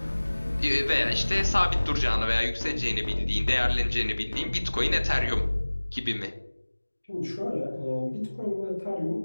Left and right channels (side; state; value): both; inverted; correlation -1.00